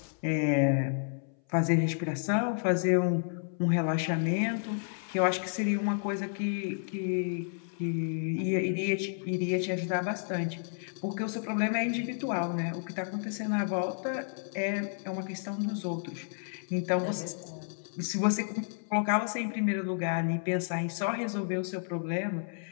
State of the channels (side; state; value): right; silent; 57 dB below the other